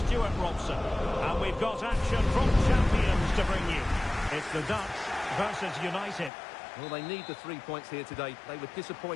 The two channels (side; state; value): right; drops out; at 6.3 s